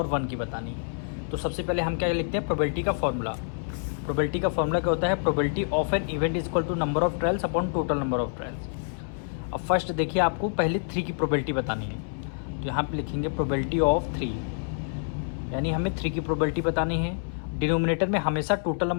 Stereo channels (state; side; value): silent; right; 60 dB below the other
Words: 1 की बतानी है। तो सबसे पहले हम क्या लिखते हैं, प्रोबेबिलिटी का फॉर्मूला। प्रोबेबिलिटी का फॉर्मूला क्या होता है, probability of an event is equal to number of trials upon total number of trials. अब फर्स्ट देखिए, आपको पहले 3 की प्रोबेबिलिटी बतानी है, तो यहाँ पे लिखेंगे प्रोबेबिलिटी ऑफ 3, यानी हमें 3 की प्रोबेबिलिटी बतानी है। डिनोमिनेटर में हमेशा टोटल